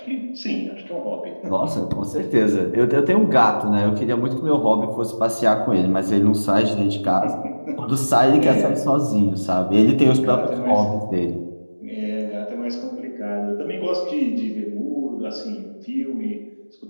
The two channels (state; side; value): inverted; both; correlation -1.00